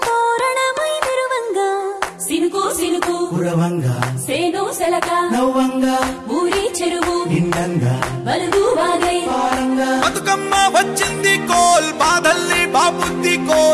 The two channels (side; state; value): both; identical; correlation 1.00